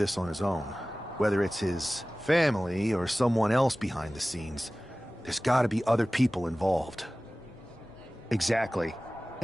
on his own. Whether it's his family or someone else behind the scenes, there's gotta be other people involved. Exactly.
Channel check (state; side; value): normal; both; correlation 0.97